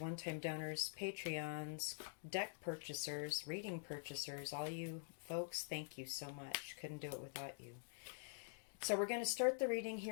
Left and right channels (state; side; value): silent; right; digital silence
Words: donors, Patreons, deck purchasers, reading purchasers, all you folks, thank you so much. Couldn't do it without you. So we're going to start the reading